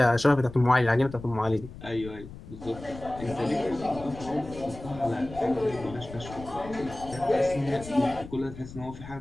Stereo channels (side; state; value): left; noise; rumble, 15 dB below the sound